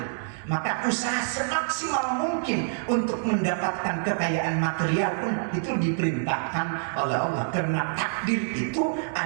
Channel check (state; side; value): silent; left; digital silence